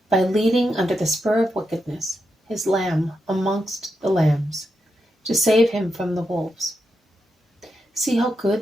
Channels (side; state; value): both; normal; correlation 0.85